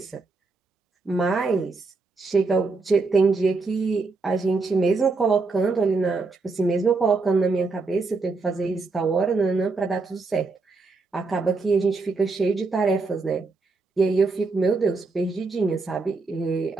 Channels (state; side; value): quieter; left; 3.9 dB